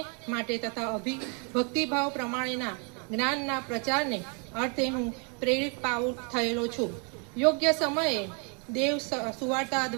માટે તથા ભક્તિભાવ પ્રમાણેના જ્ઞાનના પ્રચારને અર્થે હું પ્રેરિત પાઉલ થયેલો છું. યોગ્ય સમયે દેવ સુવાર્તા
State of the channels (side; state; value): left; quieter; 36.5 dB